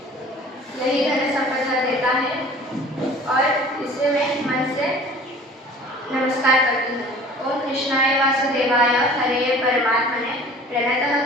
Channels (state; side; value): normal; both; correlation 0.46